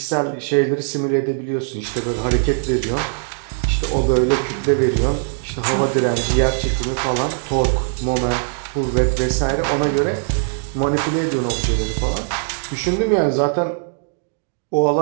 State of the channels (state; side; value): silent; left; digital silence